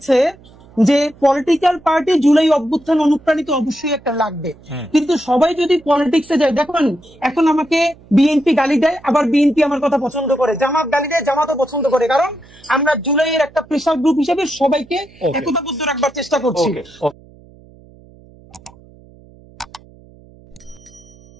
যে পলিটিক্যাল পার্টি জুলাই অভ্যুত্থান অনুপ্রাণিত অবশ্যই একটা লাগবে, কিন্তু সবাই যদি পলিটিক্সে যায়, দেখুন এখন আমাকে বিএনপি গালি দেয়, আবার বিএনপি আমার কথা পছন্দ করে, জামাত গালি দেয়, জামাতও পছন্দ করে, কারণ আমরা জুলাইয়ের একটা প্রেসার গ্রুপ হিসেবে সবাইকে একতাবদ্ধ রাখবার চেষ্টা করছি।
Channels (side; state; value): right; noise; hum, 25 dB below the sound